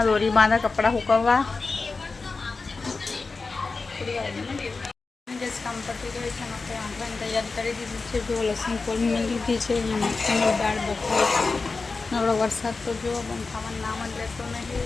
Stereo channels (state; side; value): quieter; right; 4.1 dB